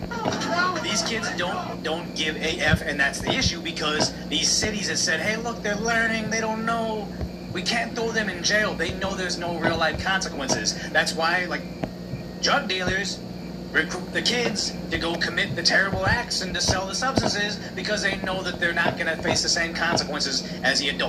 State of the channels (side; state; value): both; identical; correlation 1.00